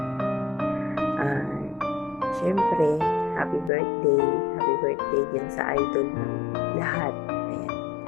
Syempre, happy birthday din sa idol ng lahat. Ayan.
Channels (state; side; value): drops out; right; at 3.7 s